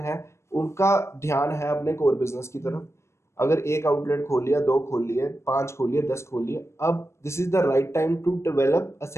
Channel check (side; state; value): right; late; 0.13 ms